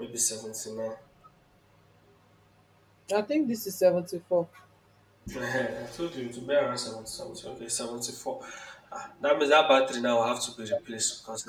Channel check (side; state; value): both; identical; correlation 1.00